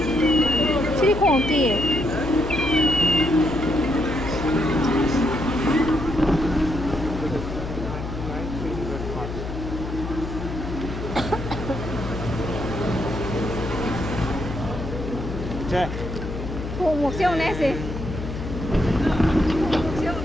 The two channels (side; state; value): left; noise; hum, 6 dB below the sound